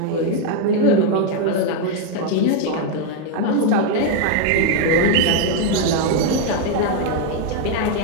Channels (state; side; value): different; both; correlation 0.01